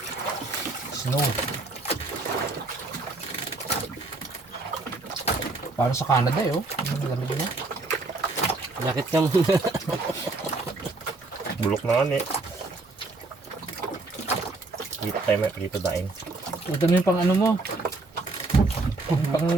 Snow. Parang sa Canada eh, oh. Ang lamig niya. Jakit ka muna. Bulok na nga eh. Dito tayo may dito daing. Ito na yung pang ano mo.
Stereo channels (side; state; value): left; quieter; 3.3 dB